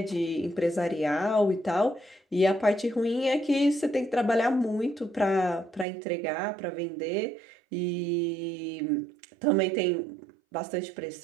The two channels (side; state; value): left; drops out; at 5.9 s